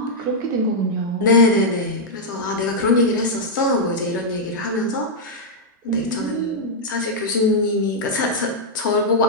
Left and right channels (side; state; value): both; normal; correlation -0.05